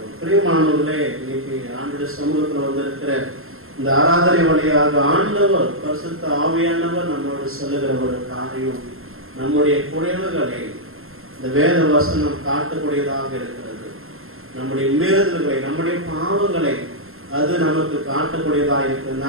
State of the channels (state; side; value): late; left; 0.61 ms